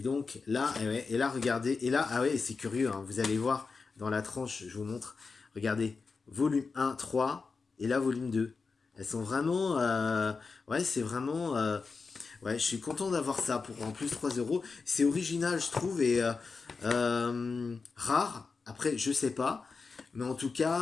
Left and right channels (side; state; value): right; quieter; 4.6 dB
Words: donc, là, et là, regardez. Et là, ah ouais, c'est curieux. Hein, vous allez voir dans la tranche, je vous montre. Regardez. Volume 1, 3. Et là, volume 2. Elles sont vraiment... ouais, c'est vraiment... ouais, je suis content d'avoir ça pour en plus 3 euros. C'est original, je trouve, et rare. Après, je sais pas. Mais en tout